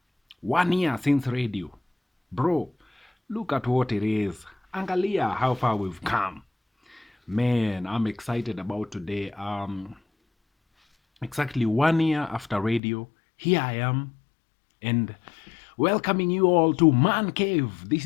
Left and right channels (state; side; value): drops out; right; at 12.8 s